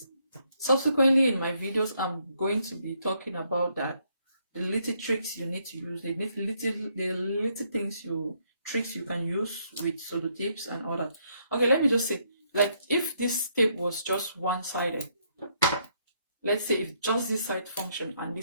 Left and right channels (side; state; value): both; inverted; correlation -0.73